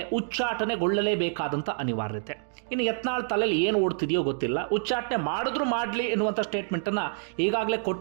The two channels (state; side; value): silent; left; digital silence